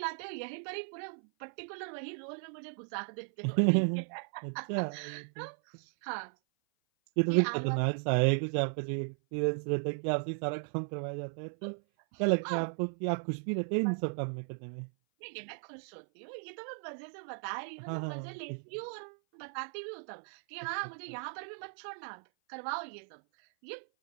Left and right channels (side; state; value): left; silent; 54 dB below the other